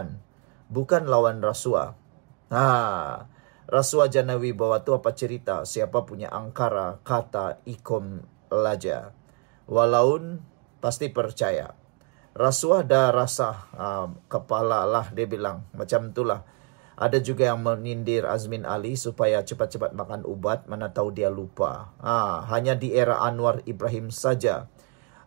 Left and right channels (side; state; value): left; quieter; 30.5 dB